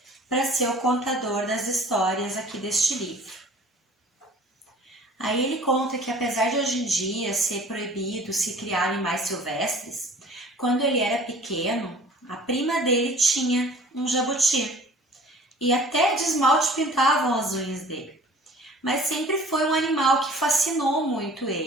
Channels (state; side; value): normal; both; correlation 0.48